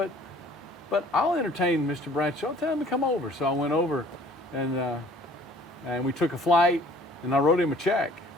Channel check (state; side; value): normal; both; correlation 0.53